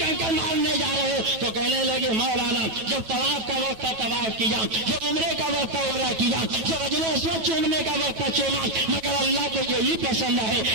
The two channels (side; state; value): left; late; 9.2 ms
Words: مارنے جا رہے ہو؟ تو کہنے لگے مولانا جب طواف کا وقت تھا طواف کیا، جب عمرے کا وقت تھا عمرہ کیا، جب حجر اسود چومنے کا وقت تھا چوما، مگر اللہ کو یہی پسند ہے